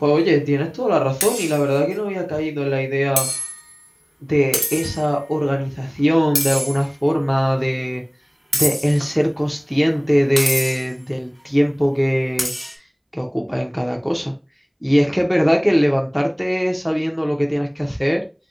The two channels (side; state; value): both; identical; correlation 1.00